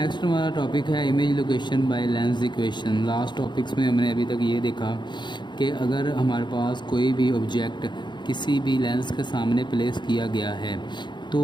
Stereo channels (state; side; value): late; right; 0.22 ms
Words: हमारा टॉपिक है image location by lens equation. Last topics में हमने अभी तक ये देखा कि अगर हमारे पास कोई भी ऑब्जेक्ट किसी भी लेंस के सामने प्लेस किया गया है तो